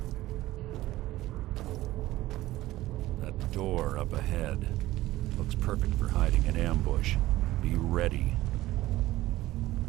Door up ahead. Looks perfect for hiding an ambush. Be ready.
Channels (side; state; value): left; quieter; 16.5 dB